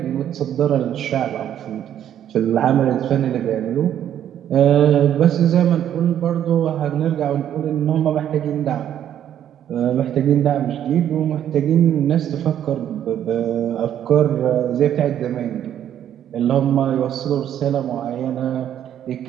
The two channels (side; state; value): left; quieter; 10.4 dB